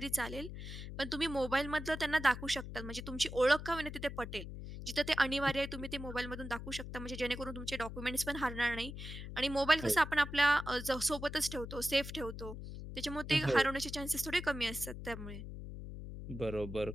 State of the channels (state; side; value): noise; left; hum, 9 dB below the sound